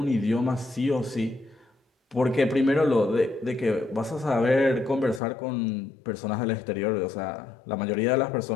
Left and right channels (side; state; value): right; drops out; at 5.2 s